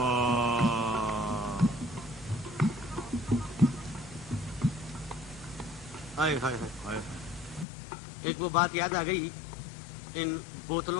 ایک وہ بات یاد آ گئی ان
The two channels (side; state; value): right; drops out; at 7.7 s